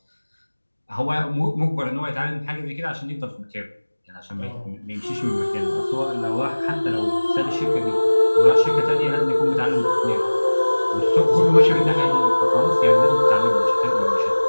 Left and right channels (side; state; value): both; inverted; correlation -1.00